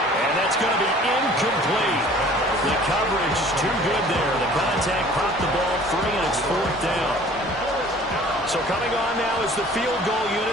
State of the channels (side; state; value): both; normal; correlation 0.50